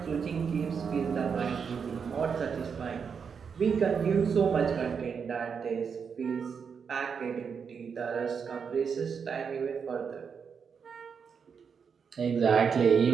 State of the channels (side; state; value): left; quieter; 6.4 dB